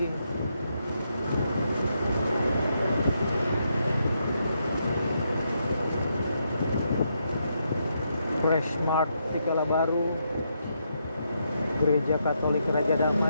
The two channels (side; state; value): both; inverted; correlation -0.79